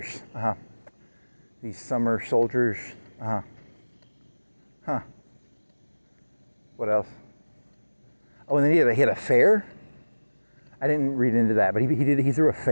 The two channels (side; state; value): both; inverted; correlation -1.00